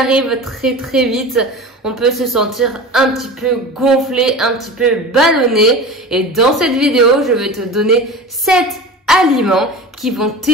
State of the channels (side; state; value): both; normal; correlation 0.33